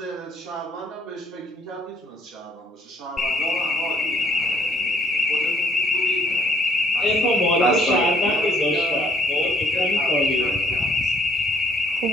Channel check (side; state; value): both; normal; correlation 0.64